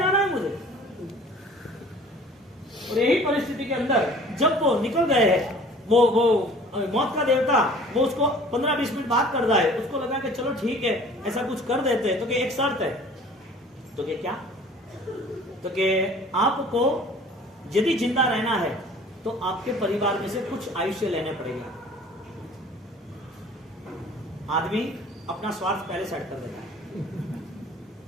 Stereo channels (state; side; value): normal; both; correlation 0.49